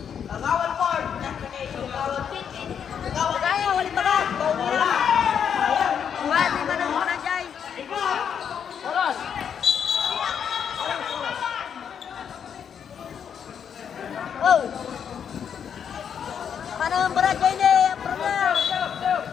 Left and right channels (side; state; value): right; quieter; 7.9 dB